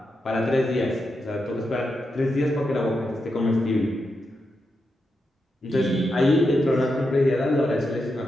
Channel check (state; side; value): normal; both; correlation 0.86